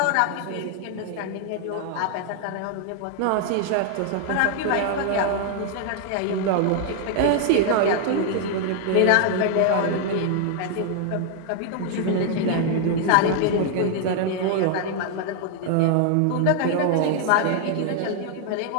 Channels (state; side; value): different; both; correlation 0.00